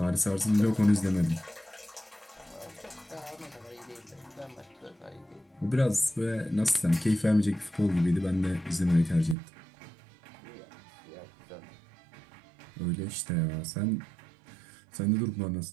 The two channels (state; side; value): drops out; left; at 9.3 s